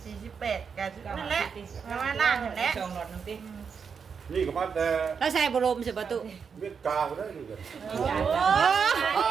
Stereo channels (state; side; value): quieter; left; 6.2 dB